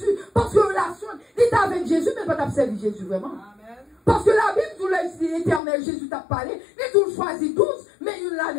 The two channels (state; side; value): drops out; right; at 5.6 s